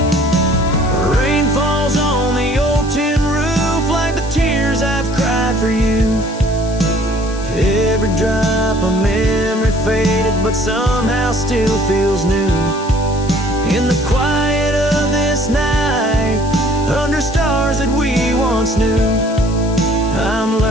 Rain falls on the old tin roof like the tears I've cried for you. Every drop of memory faded, but somehow still feels new. In the quiet of this night, under stars that we once knew, I'm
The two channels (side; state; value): left; noise; hiss, 17 dB below the sound